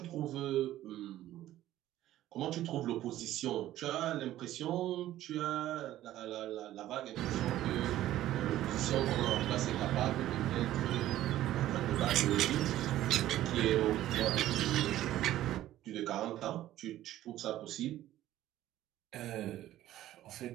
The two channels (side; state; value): left; quieter; 13.8 dB